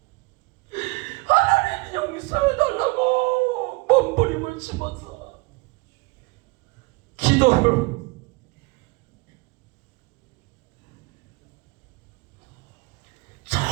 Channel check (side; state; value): left; quieter; 25.8 dB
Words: 하나님 용서해달라고 몸부림을 치면서 기도를